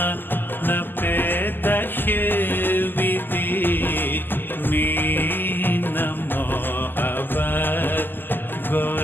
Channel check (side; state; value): right; late; 0.097 ms